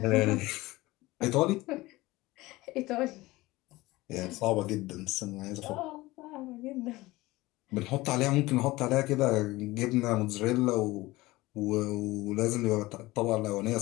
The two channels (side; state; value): right; quieter; 19.7 dB